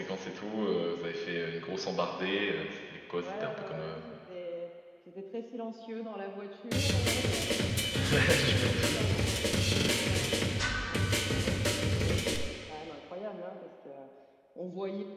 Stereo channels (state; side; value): identical; both; correlation 1.00